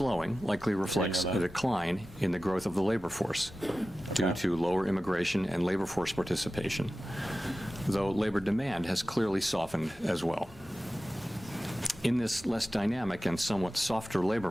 likely reflects a decline in the growth of the labor force due to lower immigration and labor force participation, though labor demand has clearly softened as well. In this less dynamic and somewhat softer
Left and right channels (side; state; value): both; normal; correlation 0.95